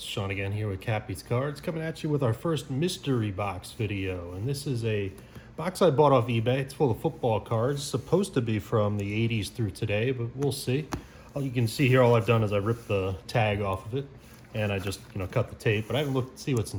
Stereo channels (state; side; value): identical; both; correlation 1.00